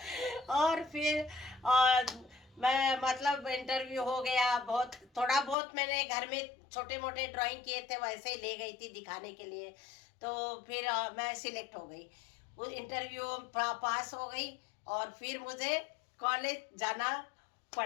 और फिर मैं मतलब इंटरव्यू हो गया, बहुत थोड़ा बहुत मैंने घर में छोटे मोटे ड्राइंग किए थे, वैसे ही ले गई थी दिखाने के लिए। तो फिर मैं सिलेक्ट हो गई, वो इंटरव्यू पास हो गई, और फिर मुझे कॉलेज जाना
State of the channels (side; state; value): right; drops out; at 5.6 s